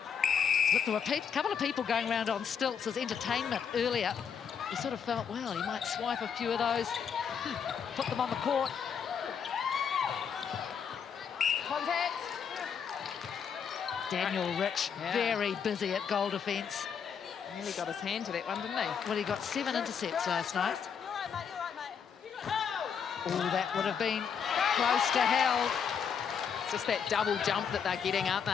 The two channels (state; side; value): quieter; right; 7.1 dB